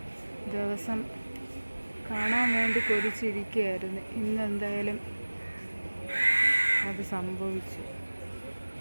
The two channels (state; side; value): inverted; both; correlation -1.00